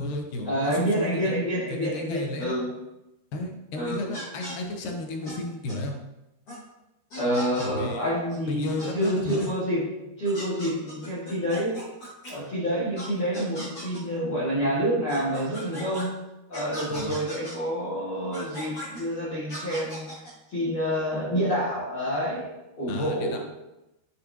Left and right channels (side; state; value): right; late; 13 ms